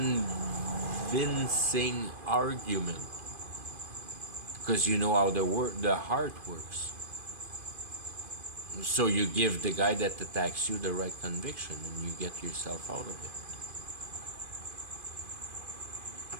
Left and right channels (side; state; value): left; late; 2.5 ms